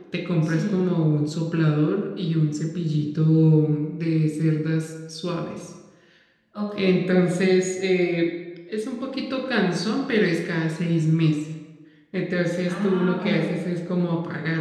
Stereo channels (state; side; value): identical; both; correlation 1.00